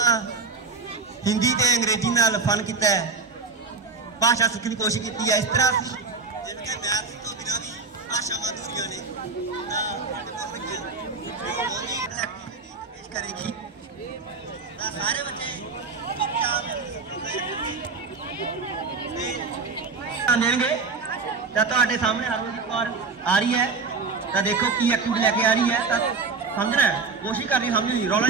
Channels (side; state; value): left; quieter; 4.5 dB